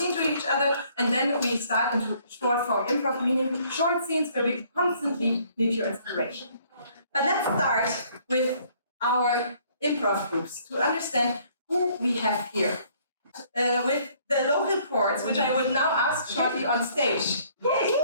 to each other, and then we start into short form improv, meaning short scenes where we constantly need your inspiration. But let's start with our improv groups to understand who we have here. With the local chords, which I would now ask shortly on stage. Yay!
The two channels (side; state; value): both; inverted; correlation -0.62